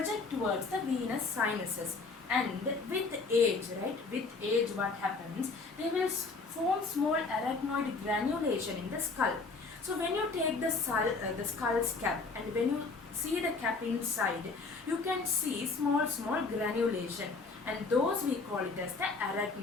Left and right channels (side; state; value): right; quieter; 4.0 dB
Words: towards the venous sinuses, and with age, right? With age, what happens? They will form small arachnoid granulation in the skull. So when you take the skull's cap, and when you see the cap inside, you can see small granulation, and those we call it as the